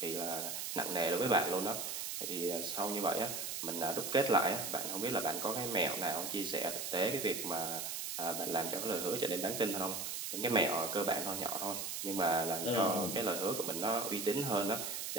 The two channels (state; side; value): noise; right; hiss, 4 dB below the sound